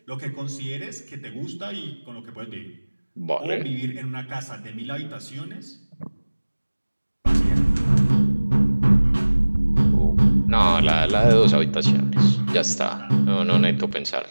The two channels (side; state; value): both; inverted; correlation -1.00